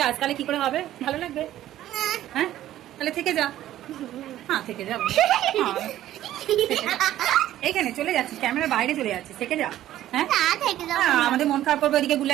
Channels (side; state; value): left; quieter; 13.2 dB